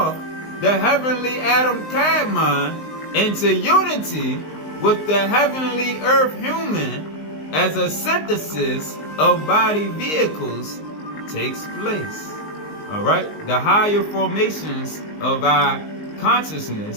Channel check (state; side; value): late; right; 19 ms